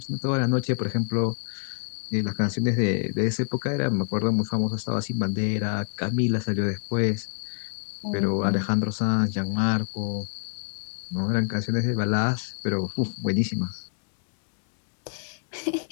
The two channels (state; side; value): silent; right; digital silence